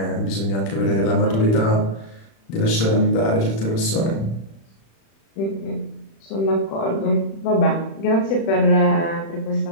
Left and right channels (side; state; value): right; late; 36 ms